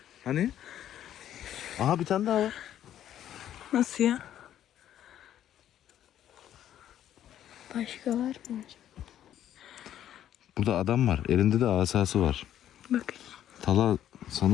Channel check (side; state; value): right; quieter; 11.2 dB